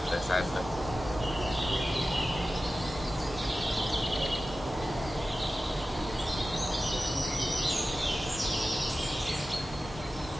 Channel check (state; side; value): normal; both; correlation 0.95